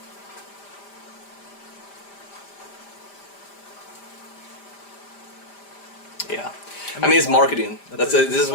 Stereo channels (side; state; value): right; late; 5.0 ms